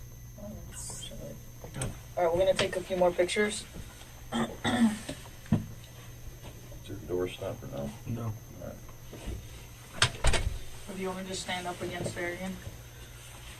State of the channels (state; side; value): identical; both; correlation 1.00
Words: do? All right, we're gonna take a few more pictures. Is your door stopper now? No. If you want to just stand up against there again.